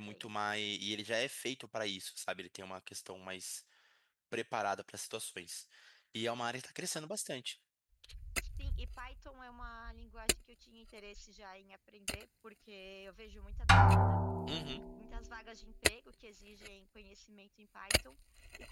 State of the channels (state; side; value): identical; both; correlation 1.00